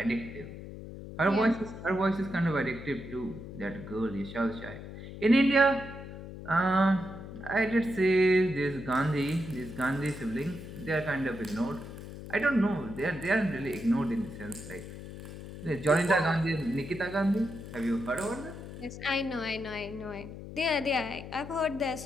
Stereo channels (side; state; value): left; noise; hum, 12 dB below the sound